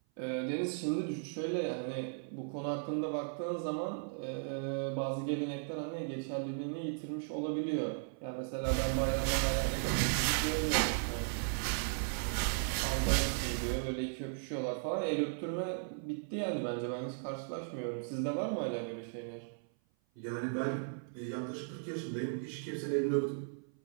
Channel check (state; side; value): silent; left; 53 dB below the other